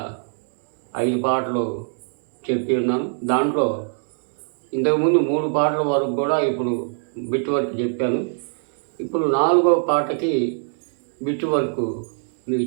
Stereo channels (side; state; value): left; silent; digital silence